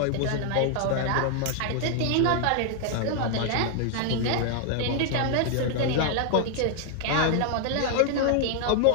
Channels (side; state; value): both; different; correlation 0.00